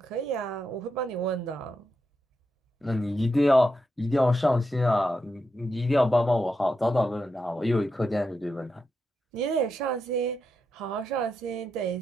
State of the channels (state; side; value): normal; both; correlation 0.85